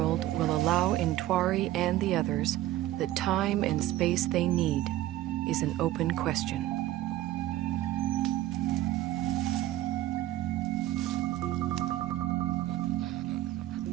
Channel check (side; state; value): left; quieter; 14.6 dB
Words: will allow Intwari and the others the time and space they need is an open question.